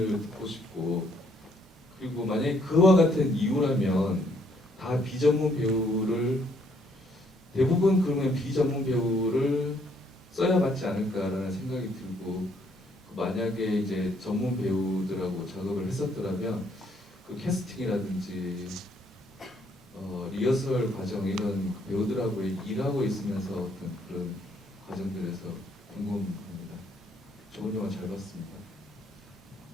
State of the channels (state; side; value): normal; both; correlation 0.68